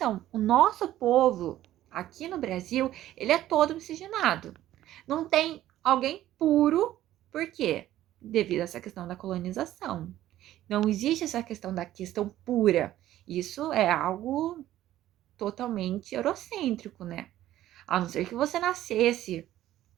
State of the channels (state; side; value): quieter; left; 13.6 dB